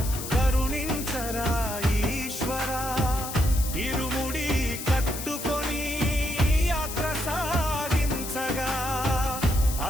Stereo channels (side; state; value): left; noise; hiss, 8 dB below the sound